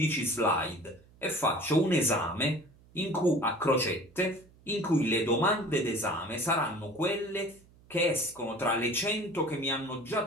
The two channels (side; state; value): right; noise; hum, 27 dB below the sound